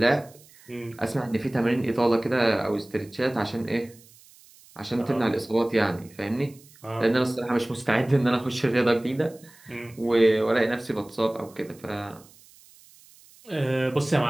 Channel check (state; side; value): noise; right; hiss, 25 dB below the sound